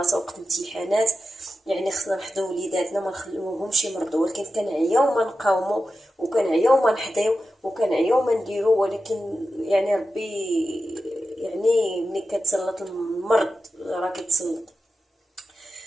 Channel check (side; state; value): both; normal; correlation 0.92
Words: وقت الامتحانات. يعني خصنا نحضروا وليداتنا ما نخليوهمش يمرضوا، ولكن كنعياو ما نقاوموا وكنعياو ما نحضيو وكنعياو ما نديرو، ولكن يعني ربي يعني ملي كتسلط المرض راه كيتسلط.